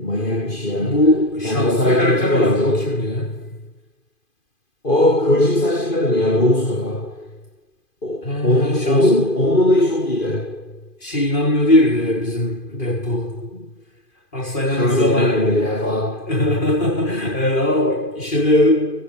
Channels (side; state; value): right; late; 2.5 ms